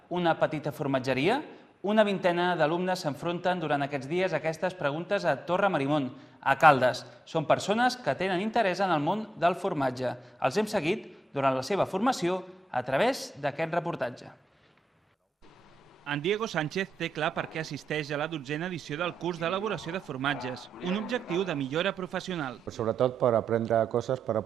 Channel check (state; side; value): normal; both; correlation 0.90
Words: una petita formatgeria? Una vintena d'alumnes s'enfronten durant aquests dies a aquestes preguntes a Torre Marimon, a Caldes. Són persones que tenen interès en el món del formatge. Els hem seguit durant la seva formació a través d'aquest reportatge. En Diego Sánchez té clar per què assisteix a la 12a edició del curs d'elaboració de formatges, un objectiu de millora professional. Sobretot per aprendre coses per